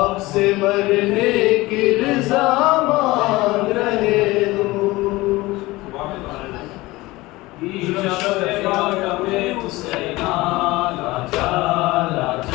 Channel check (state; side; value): quieter; right; 20.2 dB